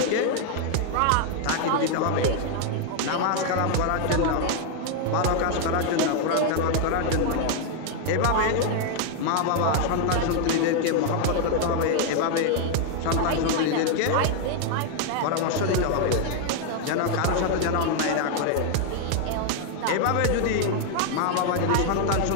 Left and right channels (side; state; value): both; different; correlation 0.00